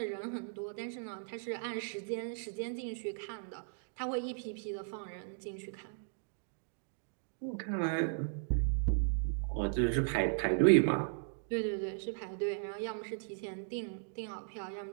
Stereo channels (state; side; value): silent; left; digital silence